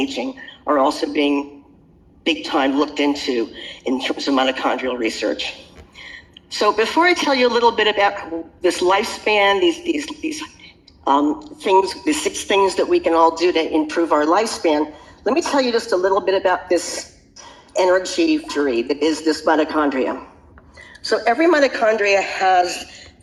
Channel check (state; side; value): identical; both; correlation 1.00